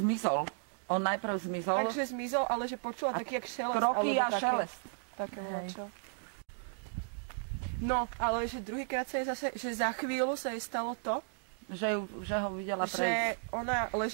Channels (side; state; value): left; silent; digital silence